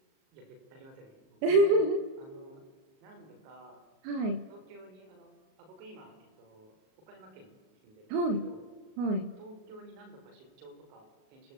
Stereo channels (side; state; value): left; late; 38 ms